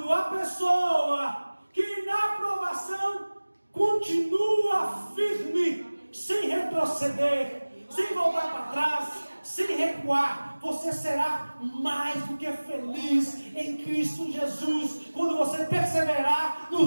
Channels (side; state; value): both; inverted; correlation -1.00